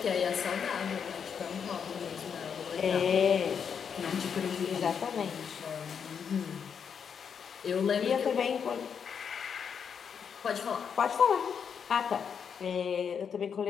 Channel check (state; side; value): quieter; right; 7.0 dB